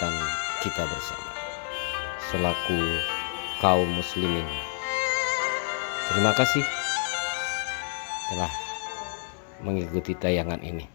kita bersama selaku kaum muslimin. Terima kasih telah mengikuti tayangan ini.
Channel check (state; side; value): silent; right; digital silence